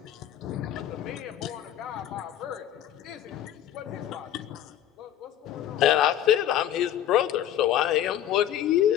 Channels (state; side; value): quieter; right; 11.2 dB